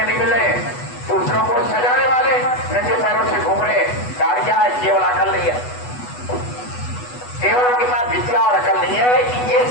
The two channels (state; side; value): late; right; 8.1 ms